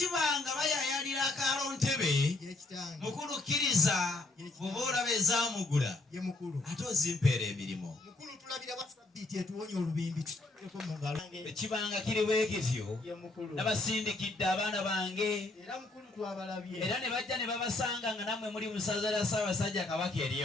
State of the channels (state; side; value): quieter; right; 3.0 dB